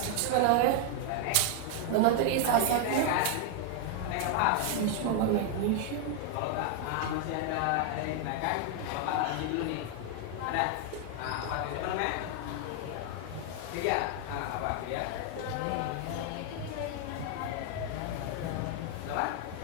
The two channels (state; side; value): different; both; correlation 0.00